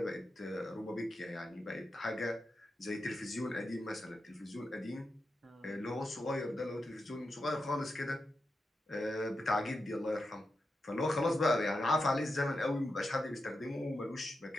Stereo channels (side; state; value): both; normal; correlation 0.89